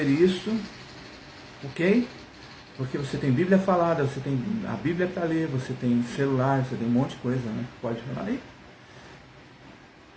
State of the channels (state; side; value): identical; both; correlation 1.00